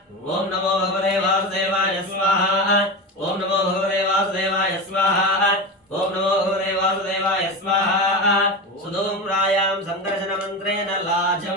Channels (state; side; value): normal; both; correlation 0.23